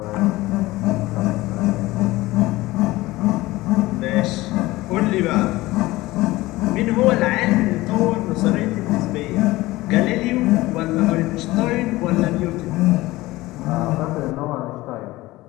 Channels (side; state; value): right; quieter; 18.8 dB